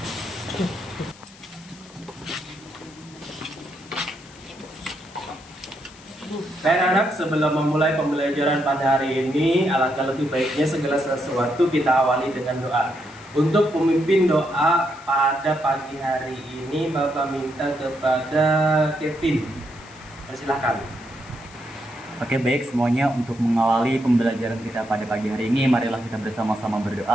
Baik anak, sebelum memulai pembelajaran pada hari ini, alangkah lebih baiknya segala sesuatu kita awali dengan doa. Untuk pemimpin doa pada pagi hari ini, Bapak minta kepada Kevin. Persilahkan. Oke, baik semuanya, untuk mengawali pembelajaran kita pada pagi hari ini, marilah kita bersama-sama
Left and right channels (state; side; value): noise; left; hiss, 23 dB below the sound